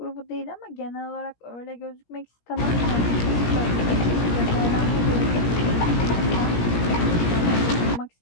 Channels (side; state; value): right; late; 17 ms